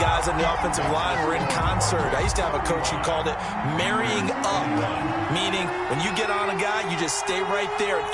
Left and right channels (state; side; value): identical; both; correlation 1.00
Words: on the offensive line were in concert. I used to have a coach who called it marrying up, meaning when you get on a guy, you just stay right there, and